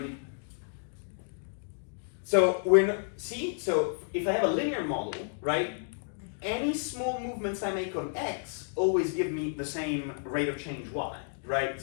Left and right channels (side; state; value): right; silent; digital silence